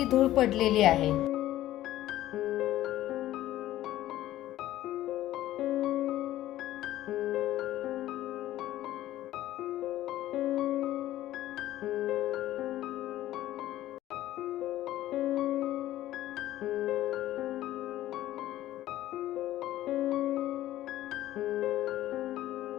धूळ पडलेली आहे।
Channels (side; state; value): right; quieter; 14.2 dB